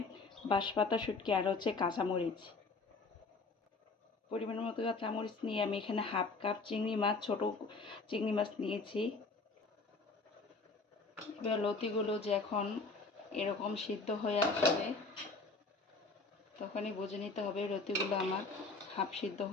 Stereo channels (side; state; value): right; quieter; 3.8 dB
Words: বাঁশপাতা শুটকি, আর হচ্ছে কাঁচামরিচ। পরিমাণ মতো কাঁচামরিচ নিয়ে আমি এখানে হাফ কাপ চিংড়ি মাছ, ছোট চিংড়ি মাছ নিয়েছি। এবার লতিগুলো যখন এরকম সিদ্ধ হয়ে আসবে তখনই বুঝে নিতে হবে লতিগুলো আমার হাফ সিদ্ধ